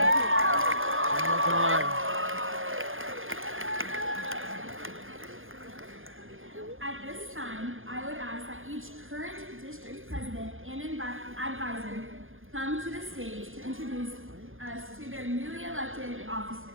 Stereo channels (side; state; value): left; late; 0.59 ms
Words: At this time, I would ask that each current district president and advisor come to the stage to introduce us to their newly elected officers.